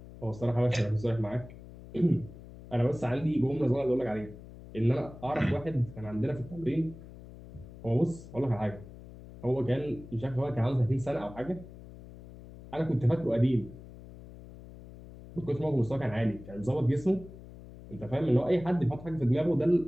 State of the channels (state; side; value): noise; left; hum, 17 dB below the sound